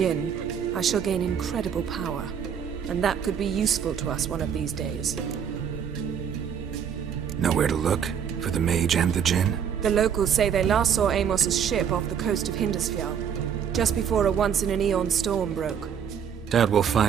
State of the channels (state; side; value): quieter; left; 7.9 dB